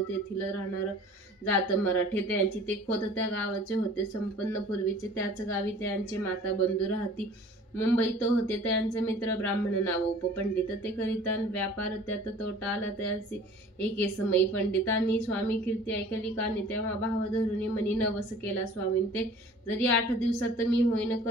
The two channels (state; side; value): normal; both; correlation 0.47